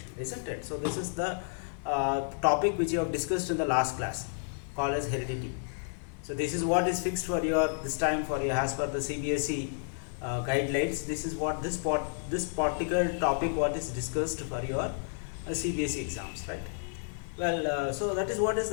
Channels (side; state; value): right; silent; 57 dB below the other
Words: isn't it? So this is the topic which you have discussed in the last class, called as heredity. So this is what is fixed for your this time for your as per the CBSE guidelines. This is what this particular topic what is discussed for your CBSE exams, right? Well, so that is what is